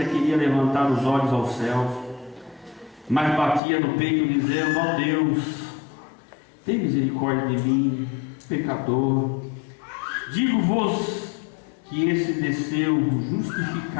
queria levantar os olhos aos céus, mas batia no peito, dizendo: ó Deus, tem misericórdia de mim, pecador. Digo-vos que esse desceu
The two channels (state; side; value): drops out; right; at 3.6 s